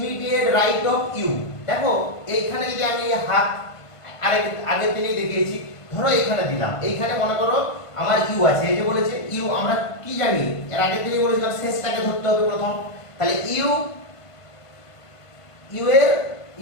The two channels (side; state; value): right; late; 1.5 ms